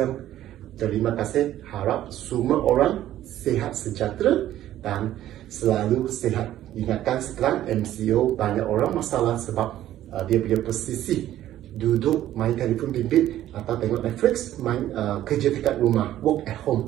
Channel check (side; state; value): left; quieter; 13.0 dB